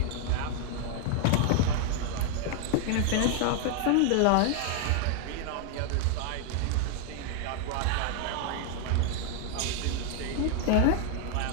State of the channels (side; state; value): both; different; correlation 0.00